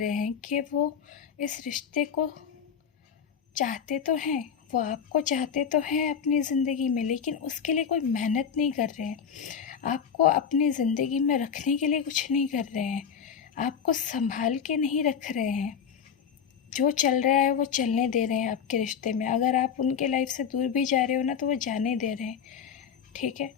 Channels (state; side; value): quieter; right; 7.4 dB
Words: हैं कि वो इस रिश्ते को चाहते तो हैं, वो आपको चाहते तो हैं अपनी ज़िंदगी में, लेकिन उसके लिए कोई मेहनत नहीं कर रहे हैं, आपको अपनी ज़िंदगी में रखने के लिए कुछ नहीं कर रहे हैं, आपको संभाल के नहीं रख रहे हैं। जो चल रहा है वो चलने दे रहे हैं आपके रिश्ते में। अगर आप उनके लाइफ से दूर भी जा रहे हो ना तो वो जाने दे रहे हैं, ठीक है।